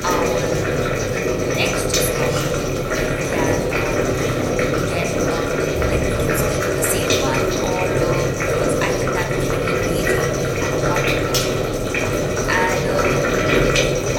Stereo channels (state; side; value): identical; both; correlation 1.00